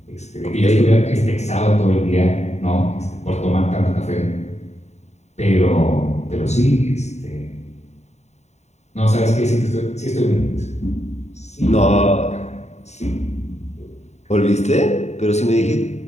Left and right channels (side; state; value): right; late; 0.32 ms